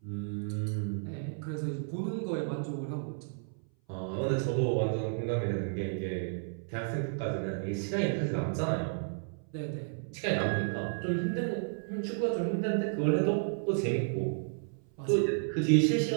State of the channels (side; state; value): left; silent; 56 dB below the other